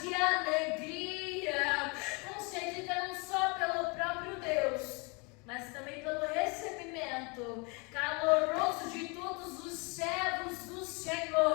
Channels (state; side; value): quieter; right; 30.4 dB